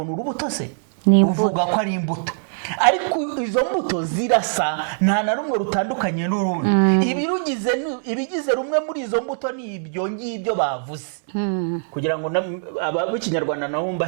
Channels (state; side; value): silent; left; digital silence